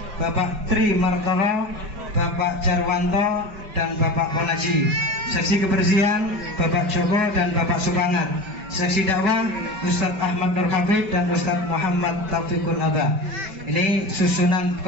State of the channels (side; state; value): left; late; 5.2 ms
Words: Bapak Tri Martono, Bapak Jarwanto dan Bapak Ponaji. Seksi Kebersihan Bapak Joko dan Bapak Supangat. Seksi Dakwah Ustadz Ahmad Nur Hafid dan Ustadz Muhammad Taufikul Adha. Ini susunan